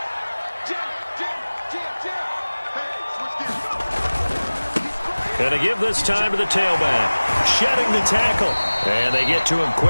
Going to give this time to the tailback. Shedding the tackle. And they get to him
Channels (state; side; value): inverted; both; correlation -1.00